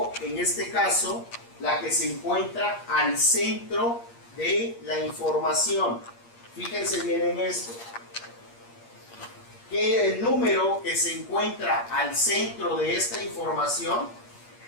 en este caso la que se encuentra al centro de la información. Fíjense bien en esto, que el número que se encuentra al centro de esta información,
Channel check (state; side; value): late; right; 8.5 ms